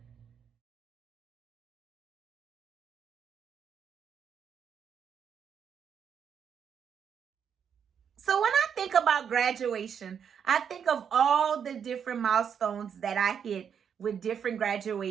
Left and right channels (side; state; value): left; quieter; 7.6 dB